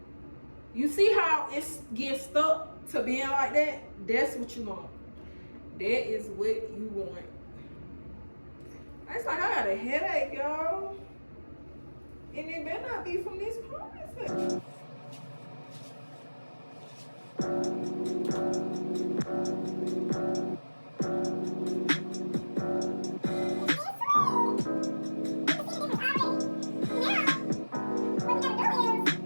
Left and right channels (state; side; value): inverted; both; correlation -1.00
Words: You see how it's getting stuck to being like that? That's what you want. That is what you want. It's like I got a headache, y'all. And it better not be from this ponytail.